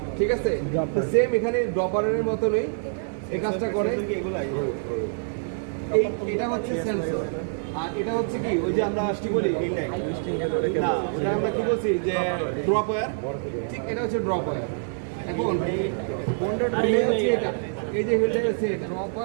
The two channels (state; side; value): silent; left; digital silence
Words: ঠিক আছে। সেম এখানে ড্রপারের মতনই এই কাজটা করে। এটা হচ্ছে সেন্সর আর এটা হচ্ছে কি ওই যে আমরা কি বলি না ওটা আমরা কি বলছি যে ড্রপ ওয়্যার, ঠিক এটা হচ্ছে ড্রপ ওয়্যার। এখন relay হচ্ছে এটা, এই যে হিলটা হচ্ছে এটা